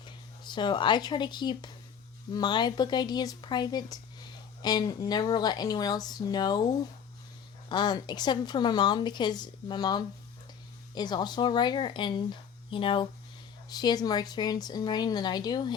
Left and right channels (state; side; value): quieter; right; 7.7 dB